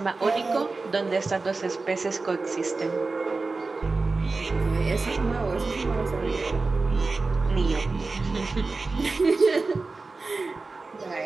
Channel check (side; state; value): left; quieter; 3.8 dB